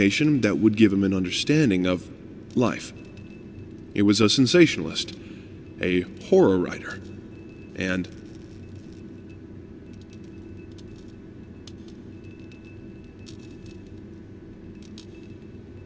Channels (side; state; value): both; identical; correlation 1.00